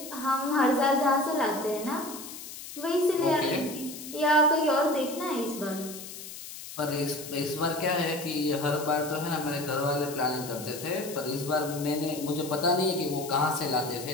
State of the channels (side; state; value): left; noise; hiss, 12 dB below the sound